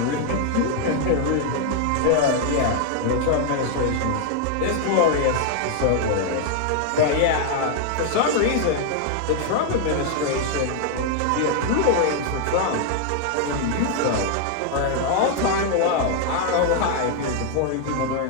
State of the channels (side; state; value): both; different; correlation 0.00